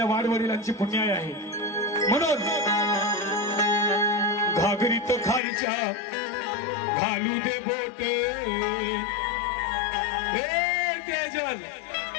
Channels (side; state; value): right; drops out; at 5.4 s